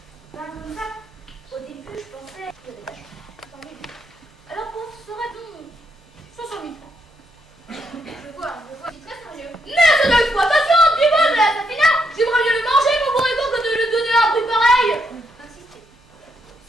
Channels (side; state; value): both; normal; correlation 0.77